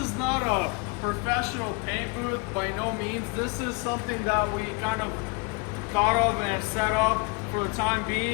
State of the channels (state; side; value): quieter; right; 28.8 dB